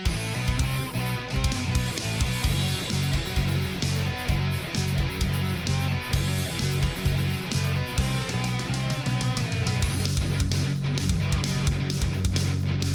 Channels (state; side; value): identical; both; correlation 1.00